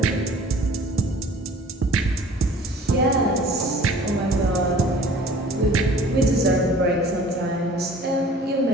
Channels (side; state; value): both; normal; correlation 0.49